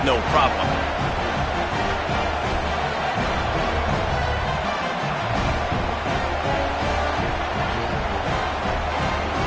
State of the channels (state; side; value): identical; both; correlation 1.00